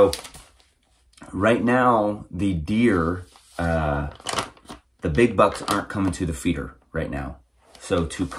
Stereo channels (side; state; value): both; identical; correlation 1.00